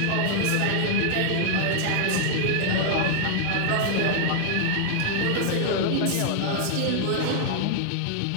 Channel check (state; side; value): different; both; correlation 0.00